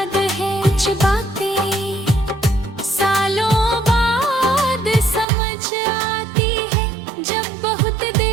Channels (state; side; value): drops out; left; at 5.2 s